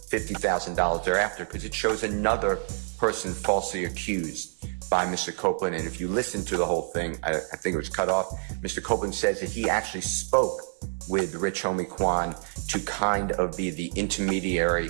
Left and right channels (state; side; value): silent; left; digital silence